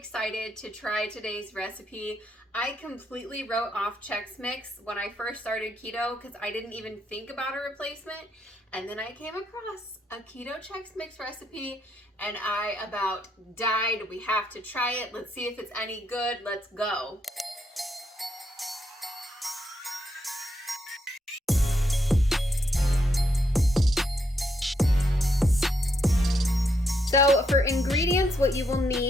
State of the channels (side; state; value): both; normal; correlation 0.77